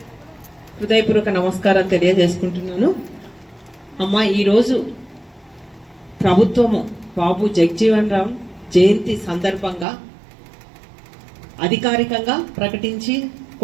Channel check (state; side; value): drops out; left; at 9.9 s